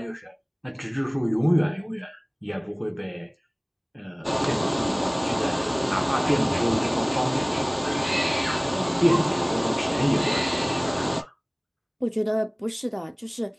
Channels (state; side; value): identical; both; correlation 1.00